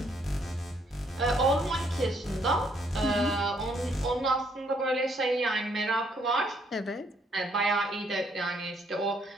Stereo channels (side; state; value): both; normal; correlation 0.69